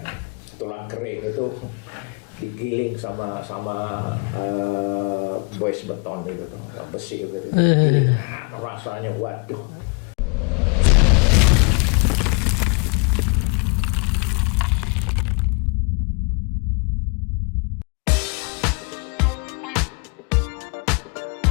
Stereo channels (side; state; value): right; quieter; 33.7 dB